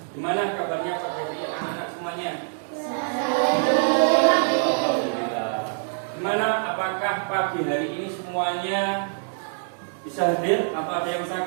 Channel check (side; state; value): left; silent; digital silence